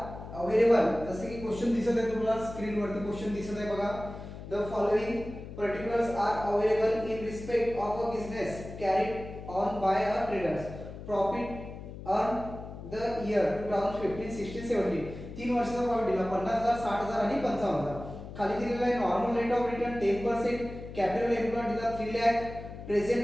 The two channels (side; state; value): left; noise; hum, 12 dB below the sound